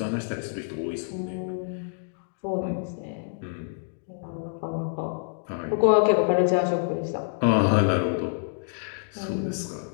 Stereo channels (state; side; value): silent; right; digital silence